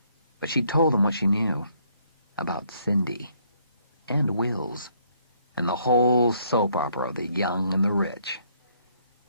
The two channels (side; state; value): both; inverted; correlation -0.68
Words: But she told them what she knew about Cindy. And Wills, and the whole soap opera of the young and the rich.